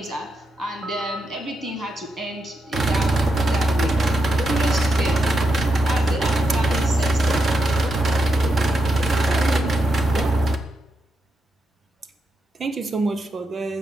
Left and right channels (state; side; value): normal; both; correlation 0.84